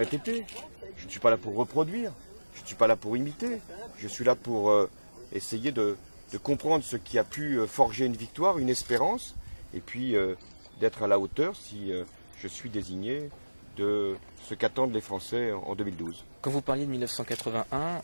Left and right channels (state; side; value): inverted; both; correlation -1.00